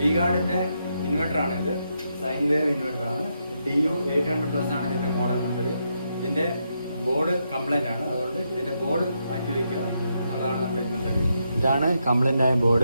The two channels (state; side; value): inverted; both; correlation -0.81